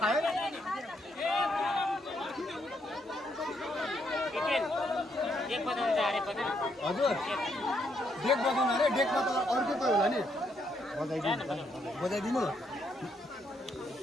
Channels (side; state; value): both; normal; correlation 0.75